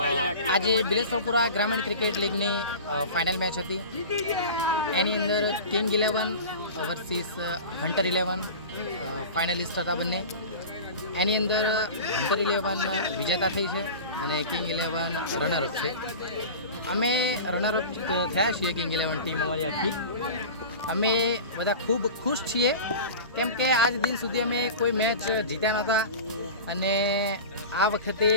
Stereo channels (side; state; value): both; inverted; correlation -0.34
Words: આજે બિલેશ્વરપુરા ગ્રામીણ ક્રિકેટ લીગની ફાઇનલ મેચ હતી. એની અંદર કિંગ 11 વર્સિસ હન્ટર 11 ફાઇનલિસ્ટ હતા બંને. એની અંદર હન્ટર 11 વિજેતા થઈ છે અને કિંગ 11 રનરઅપ છે. અમે રનરઅપ થયા છીએ કિંગ 11 ટીમ અમારી આખી. અમે બધા ખૂબ ખુશ છીએ કેમ કે આજ દિન સુધી અમે કોઈ મેચ જીત્યા નહોતા અને આ વખતે